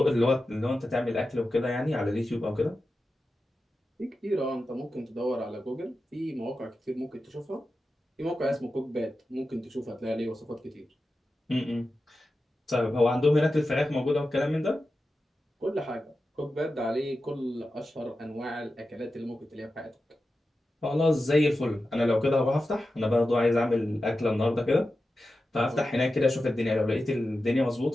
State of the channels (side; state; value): both; normal; correlation 0.92